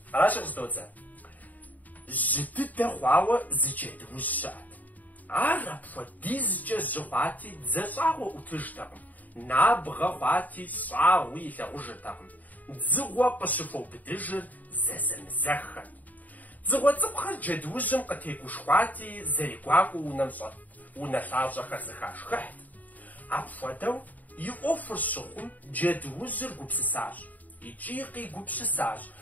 Аращи къыздодзэ. Жьы дыдэ хъуауэ зы джэдуужь щыӀэт. Ар апхуэдизкӀэ жьы хъуати дзэщӀагъуэ Ӏутыжтэкъым. Набгъэ хъуати щӀагъуи илъагъужыртэкъым. Дзыгъуэ къыщыхуэубыдыжыр зэзэмызэххэт. Дзыгъуэ цӀыкӀухэр джэдуужьым къытегушхуати, зэригуакӀуэу унэ лъащӀэхэр зыхашхыхьт. Апхуэдэу и Ӏуэхур щыхъум джэдуужьыр гупсысащ. ИкӀи къигупсысащ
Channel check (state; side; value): late; right; 0.078 ms